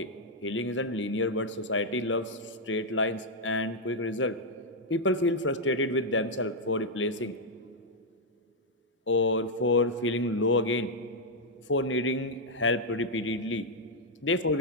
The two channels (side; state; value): both; normal; correlation -0.02